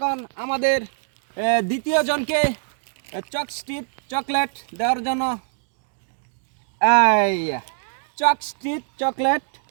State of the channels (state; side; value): silent; left; digital silence